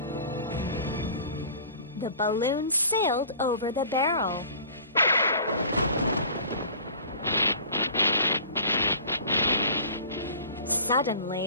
The balloon sailed over the barrel.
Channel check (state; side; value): inverted; both; correlation -0.44